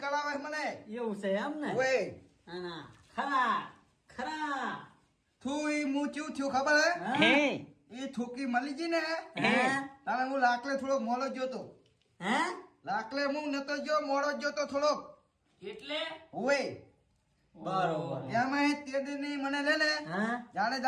મને એવું છે એમ ને ઓય ખરા ખરા તું ઈ હું ચેવું થયું ખબર હે એ છોકરી મળી ગઈ ને તારે હું લાકલે થોડો મોડો જ જોતો લાકલે હું નતો જો મોડો જ જોતો થોડોક એટલે ઓય બરોબર એમાં તે દિન મને લે ને જાણે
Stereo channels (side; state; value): both; identical; correlation 1.00